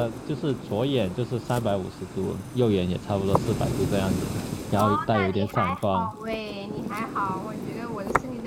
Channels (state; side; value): identical; both; correlation 1.00